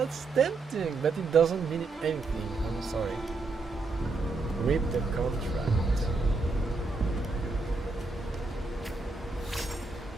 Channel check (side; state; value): left; quieter; 3.7 dB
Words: tempting, but it doesn't mean anything. I'm sorry. Read the contract.